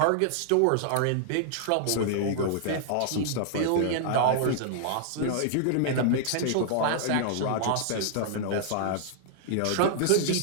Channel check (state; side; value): different; both; correlation -0.01